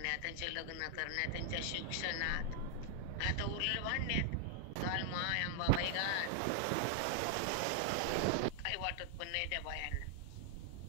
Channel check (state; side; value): different; both; correlation 0.00